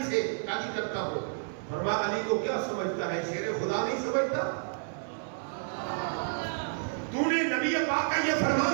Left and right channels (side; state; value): left; silent; 56 dB below the other